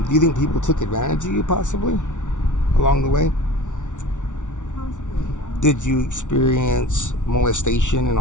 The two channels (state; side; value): late; right; 0.86 ms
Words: Do you think people took advantage of you, possibly, along the way? Possibly, yeah. Did you experience molestation and